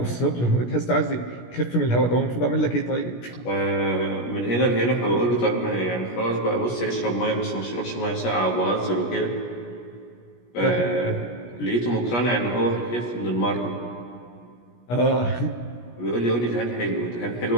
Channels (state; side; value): late; right; 17 ms